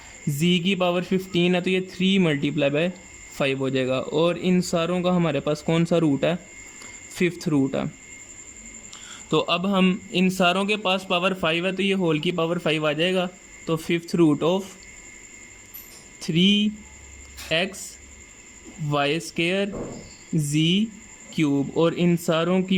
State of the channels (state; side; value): identical; both; correlation 1.00